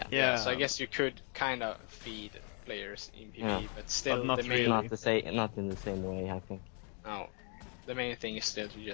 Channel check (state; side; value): quieter; right; 38.8 dB